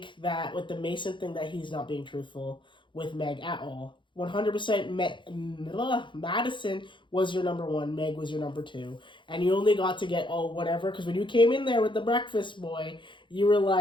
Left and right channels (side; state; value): right; late; 0.23 ms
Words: that with the Mason thing that he's not being truthful with Meg at all. 100% Madison was your number one, Meg was your number two, and you only got to get whatever, because when you came in there with the breakfast boy, you were